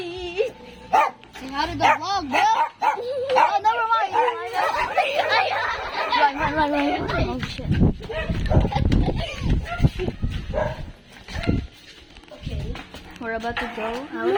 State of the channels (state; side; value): identical; both; correlation 1.00